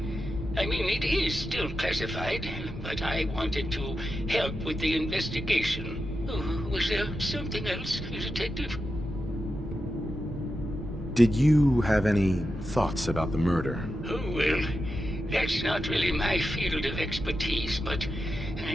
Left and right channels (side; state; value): both; normal; correlation 0.89